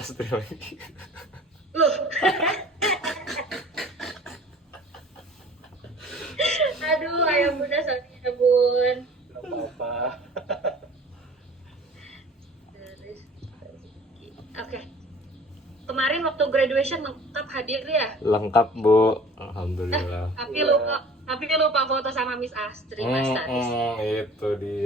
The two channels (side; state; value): both; normal; correlation 0.47